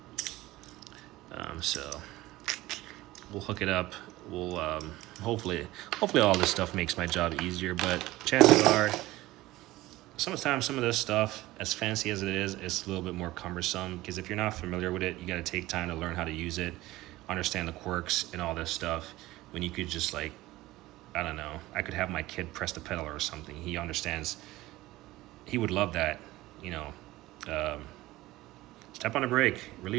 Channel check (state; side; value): quieter; left; 17.8 dB